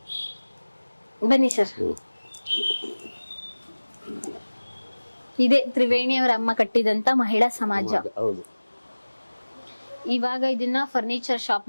ಬನ್ನಿ ಸರ್. ಇದೇ ತ್ರಿವೇಣಿ ಅವರ ಅಮ್ಮ ಕಟ್ಟಿದಂತ ಮಹಿಳಾ ಸಮಾಜ. ಹೌದು. ಇವಾಗ ಇದನ್ನ ಫರ್ನಿಚರ್ ಶಾಪ್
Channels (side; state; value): both; inverted; correlation -1.00